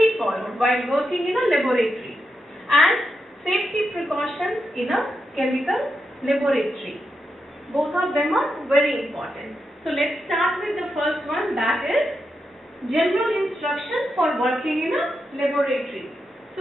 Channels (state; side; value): normal; both; correlation 0.85